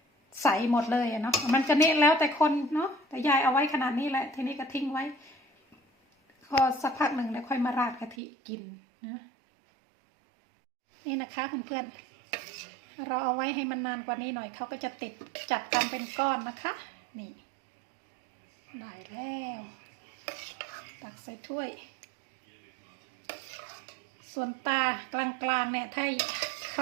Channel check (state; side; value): drops out; left; at 8.2 s